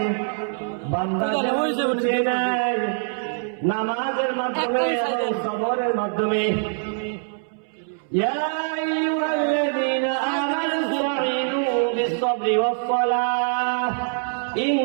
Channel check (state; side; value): silent; left; 63 dB below the other